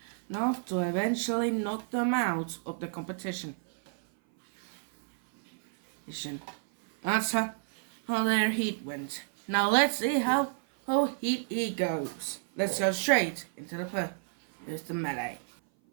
eventually knock them out of the competition. That's how their heat went. Now let's see how Heat E goes. Let's go straight into the melee.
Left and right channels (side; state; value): left; silent; 56 dB below the other